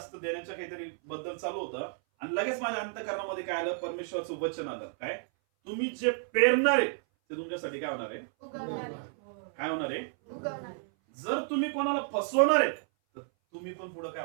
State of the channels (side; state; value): left; silent; 57 dB below the other